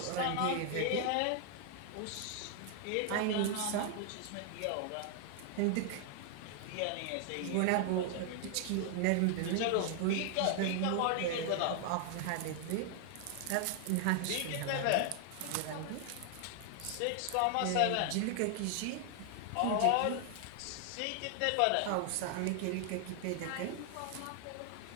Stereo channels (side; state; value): both; different; correlation 0.00